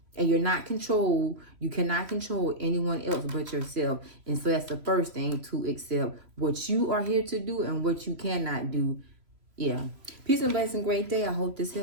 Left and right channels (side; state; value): left; late; 3.0 ms